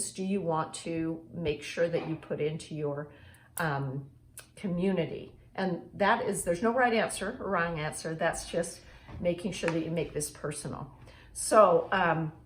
do you want to make sure that you put into your community? And that is, there's no right answer or wrong answer. That's just making sure that you make this personal. So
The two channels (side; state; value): both; identical; correlation 1.00